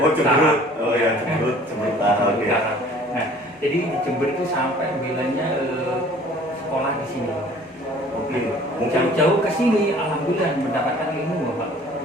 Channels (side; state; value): both; normal; correlation 0.51